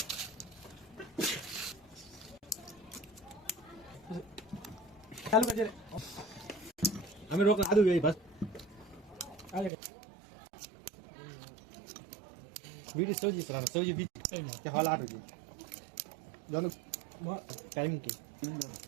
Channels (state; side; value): drops out; left; at 9.7 s